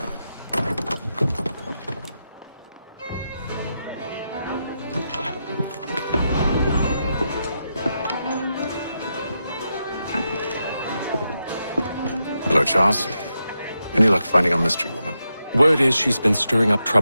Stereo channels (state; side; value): inverted; both; correlation -0.86